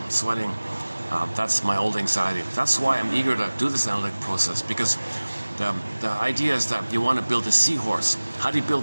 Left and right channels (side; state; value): both; inverted; correlation -1.00